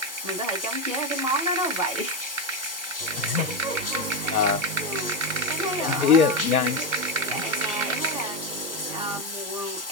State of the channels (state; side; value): normal; both; correlation 0.11